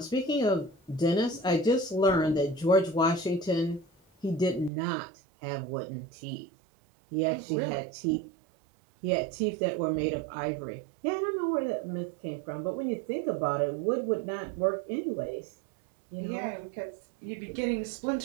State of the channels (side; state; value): left; drops out; at 4.7 s